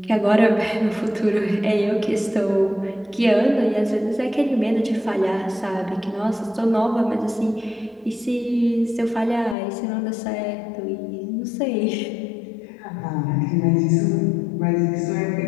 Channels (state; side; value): drops out; right; at 9.6 s